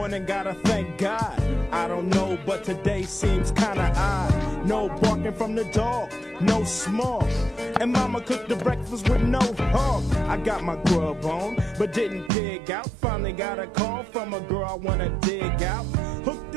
gotta thank God. I don't know, but today seems kinda odd. No barking from the dog, no small. And mama cooked the breakfast with no hog. I got my grub on, but didn't dig out. Finally got a call from a girl I wanna dig out. Hooked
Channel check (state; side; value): drops out; left; at 12.3 s